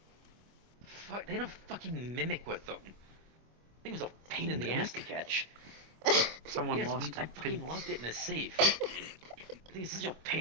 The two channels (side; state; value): left; late; 25 ms